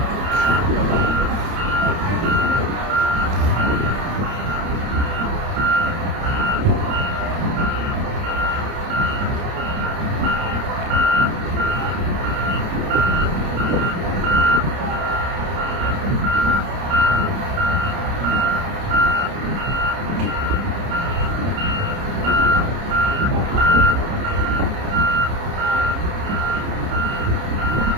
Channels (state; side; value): late; left; 30 ms